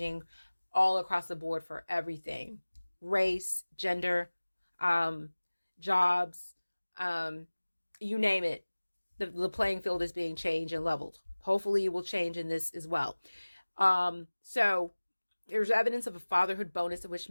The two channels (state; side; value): inverted; both; correlation -1.00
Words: all across the board for everything. Race, gender, jobs, you name it. The playing field is being changed and leveled. Hopefully it will change in this as well. So there's evidence of a fatherhood bonus in which